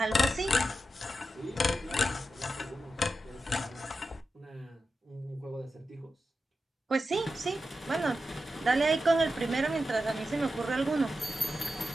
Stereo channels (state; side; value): normal; both; correlation 0.90